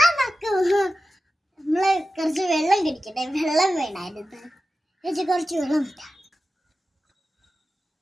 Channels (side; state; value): both; normal; correlation 0.93